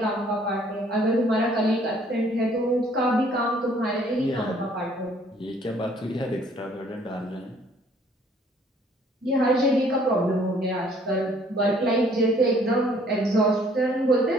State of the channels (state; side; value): normal; both; correlation 0.60